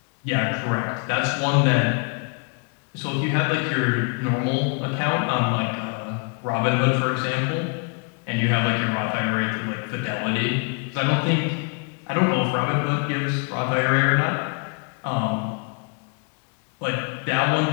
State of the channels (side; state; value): right; quieter; 36.5 dB